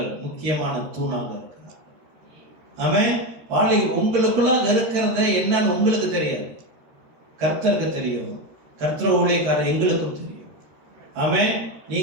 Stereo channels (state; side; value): late; left; 13 ms